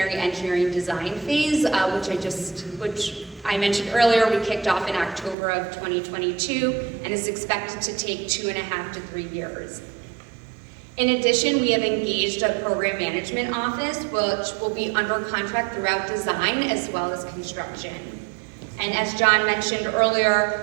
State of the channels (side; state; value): left; drops out; at 5.4 s